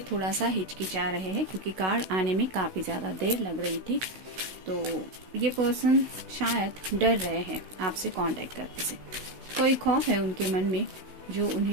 थोड़ा सा हिचकिचा रहे हैं क्योंकि कार्ड आने में काफी ज्यादा देर लग रही थी। तो ये पर्सन शायद डर रहे हैं आपसे कांटेक्ट करने से। कोई खौफ है उनके मन में जो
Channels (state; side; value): late; left; 16 ms